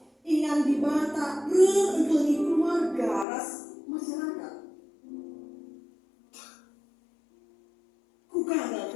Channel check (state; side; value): drops out; right; at 3.2 s